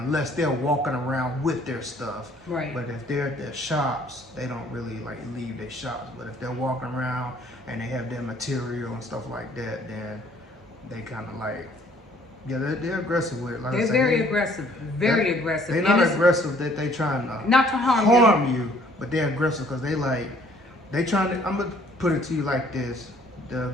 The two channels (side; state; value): both; normal; correlation 0.59